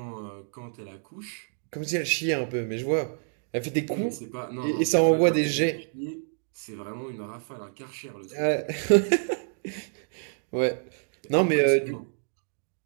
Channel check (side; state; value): left; silent; digital silence